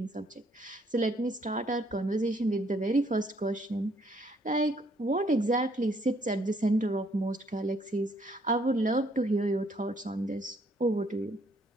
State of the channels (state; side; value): normal; both; correlation 0.67